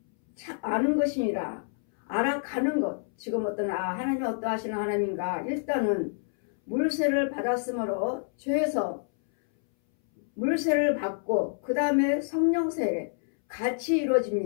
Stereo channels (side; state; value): right; silent; 60 dB below the other